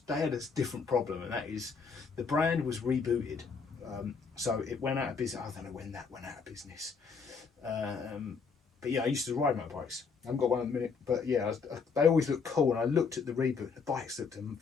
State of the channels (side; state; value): right; quieter; 5.4 dB